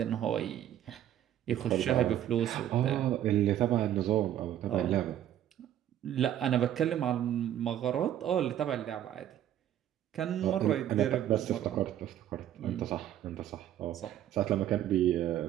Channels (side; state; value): left; quieter; 11.4 dB